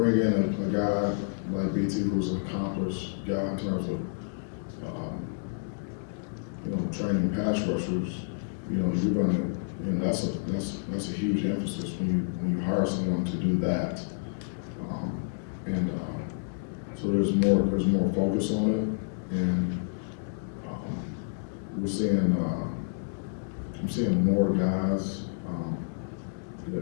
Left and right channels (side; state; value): right; quieter; 39.2 dB